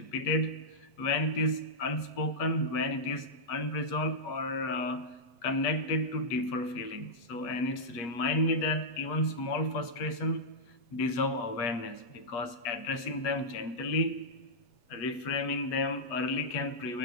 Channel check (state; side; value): late; right; 8.4 ms